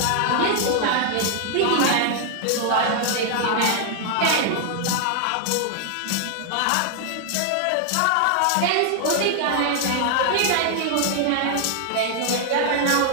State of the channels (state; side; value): different; both; correlation 0.00